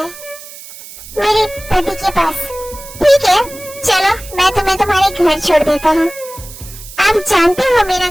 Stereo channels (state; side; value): noise; right; hiss, 16 dB below the sound